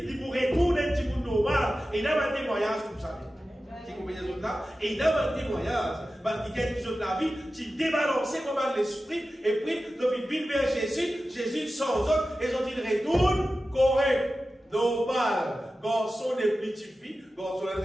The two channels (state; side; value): normal; both; correlation 0.94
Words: il pour retourner un petit peu normal. Et il y a un témoignage comme ça. Tu comprends les autres là? Et il y a un témoignage. Qui gagne les autres la vie, qui débalancé comme l'esprit, et puis, ils viennent vers Jésus, Jésus sans autre, et ils ont dit, retourne correct, normal, garçon des petites filles, garçon